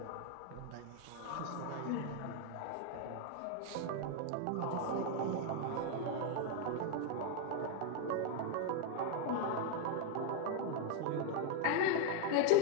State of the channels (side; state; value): both; different; correlation 0.00